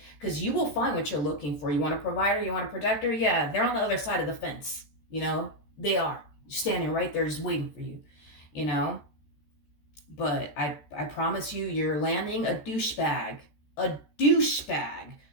Because you will find what you're looking for. You want a provider, you want a protector? Yeah, they're on the other side of the fence. They are standing right there just waiting for you, But I promise you, you're landing a douchebag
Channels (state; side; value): late; right; 14 ms